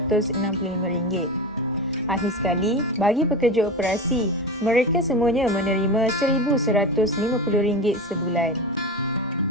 Akhir sekali, bagi pekerja operasi, mereka semuanya menerima RM1,150 sebulan.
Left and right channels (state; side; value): normal; both; correlation 0.24